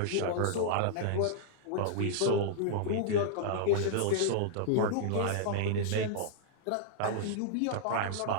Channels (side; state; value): both; different; correlation -0.01